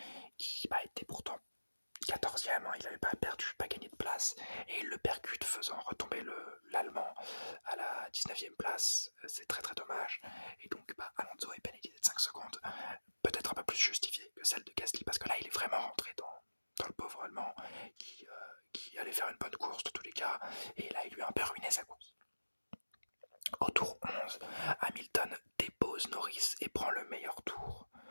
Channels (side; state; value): both; inverted; correlation -1.00